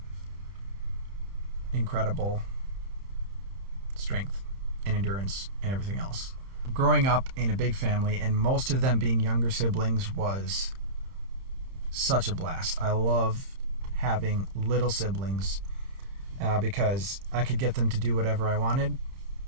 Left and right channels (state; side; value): late; left; 30 ms